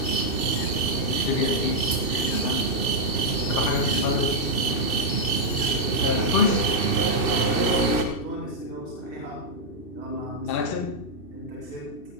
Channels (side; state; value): right; late; 2.7 ms